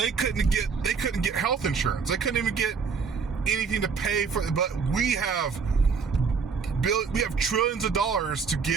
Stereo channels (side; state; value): left; quieter; 5.6 dB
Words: couldn't get health insurance. They couldn't even get anything to pay for. But we have trillions of dollars to